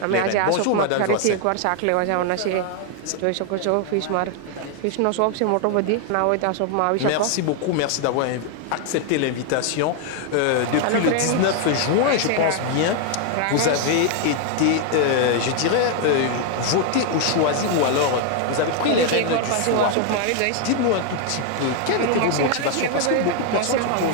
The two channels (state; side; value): different; both; correlation 0.00